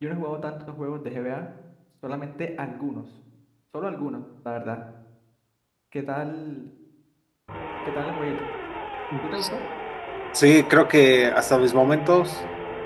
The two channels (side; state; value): both; identical; correlation 1.00